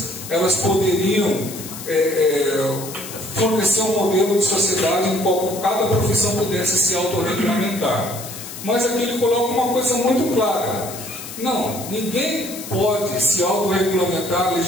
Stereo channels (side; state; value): left; noise; hiss, 11 dB below the sound